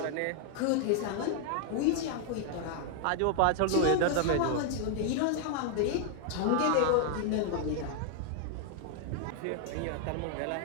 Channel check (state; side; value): different; both; correlation 0.00